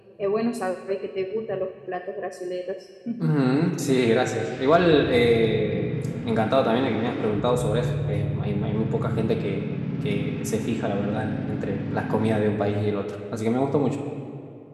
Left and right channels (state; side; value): identical; both; correlation 1.00